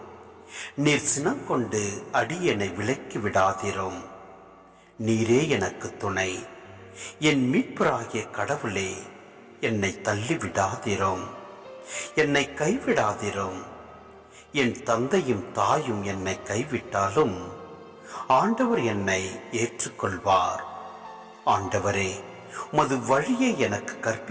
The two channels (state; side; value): identical; both; correlation 1.00